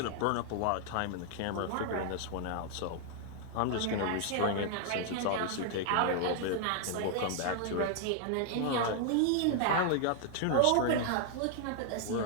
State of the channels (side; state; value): both; different; correlation 0.00